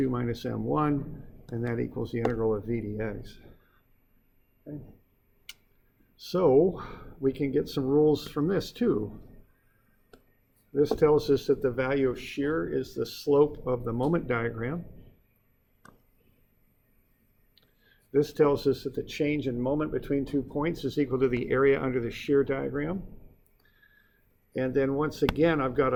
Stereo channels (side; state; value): both; identical; correlation 1.00